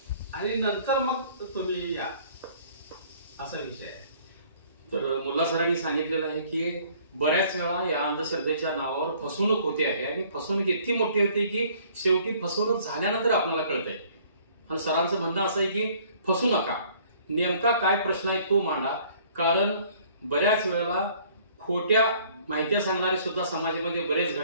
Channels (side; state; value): both; inverted; correlation -0.57